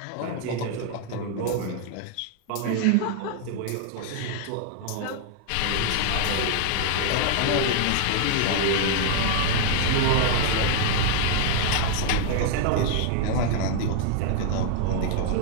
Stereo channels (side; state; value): both; different; correlation 0.00